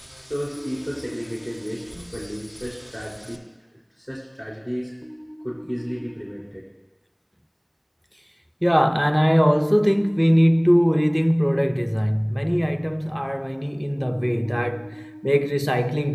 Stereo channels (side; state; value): both; identical; correlation 1.00